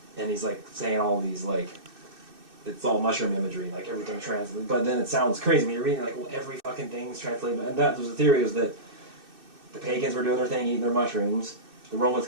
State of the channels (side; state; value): left; late; 2.6 ms